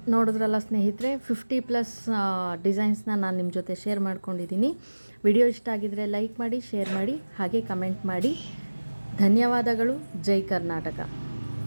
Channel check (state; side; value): inverted; both; correlation -1.00